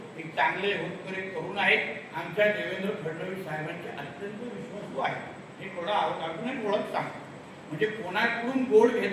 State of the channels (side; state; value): both; identical; correlation 1.00